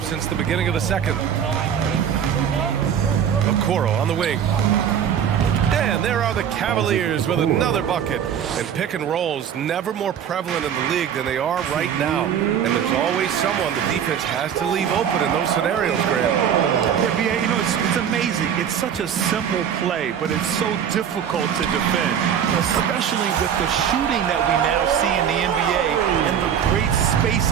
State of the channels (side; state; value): left; quieter; 8.7 dB